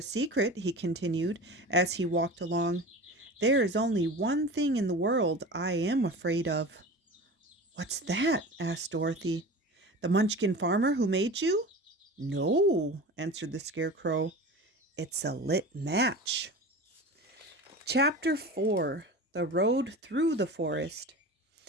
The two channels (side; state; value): both; normal; correlation 0.33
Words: secret," he continued as he walked along. "There is only one thing in the world I am afraid of." "What's that?" asked Dorothy. "The Munchkin farmer who made you?" "No," answered the Scarecrow. "It's a lit match." Chapter 4: The Road Through the Forest.